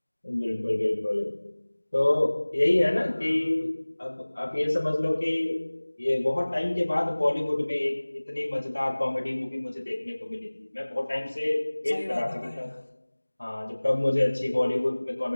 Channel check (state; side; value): inverted; both; correlation -1.00